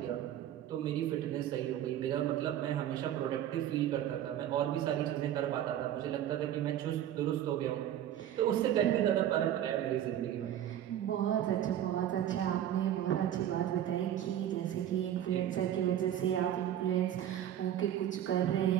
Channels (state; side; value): quieter; left; 11.2 dB